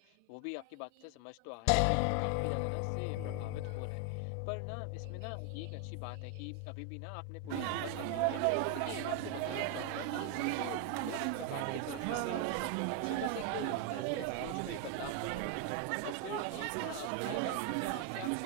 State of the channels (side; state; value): both; different; correlation 0.00